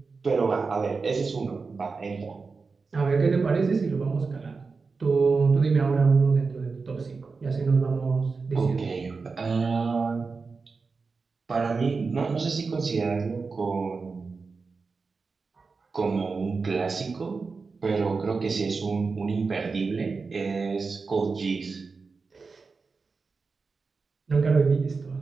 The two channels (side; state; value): left; quieter; 4.5 dB